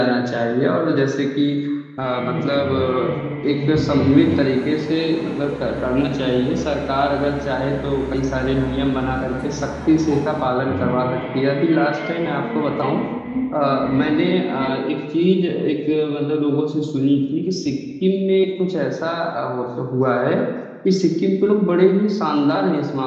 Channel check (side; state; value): both; identical; correlation 1.00